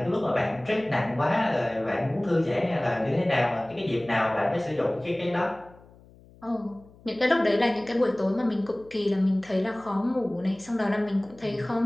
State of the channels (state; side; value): noise; left; hum, 25 dB below the sound